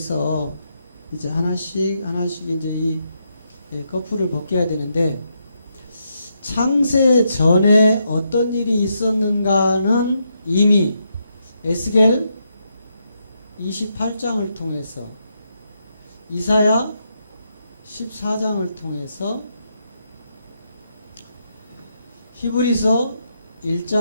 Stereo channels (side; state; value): both; inverted; correlation -0.80